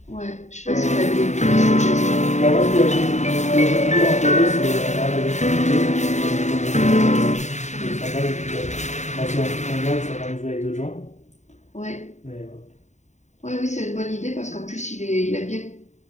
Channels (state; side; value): late; right; 0.34 ms